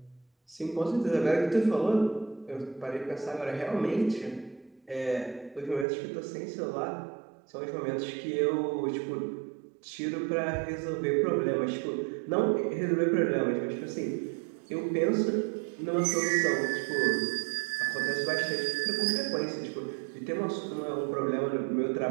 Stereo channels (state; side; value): drops out; left; at 5.9 s